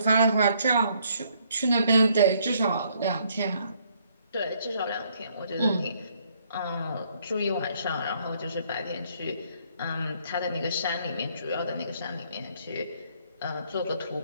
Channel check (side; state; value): both; inverted; correlation -0.67